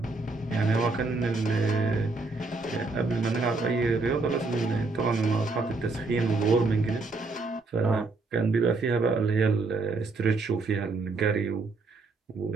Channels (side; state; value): left; quieter; 3.7 dB